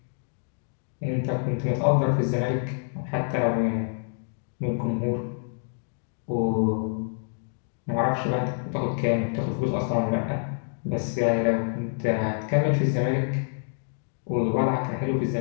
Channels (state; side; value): silent; right; digital silence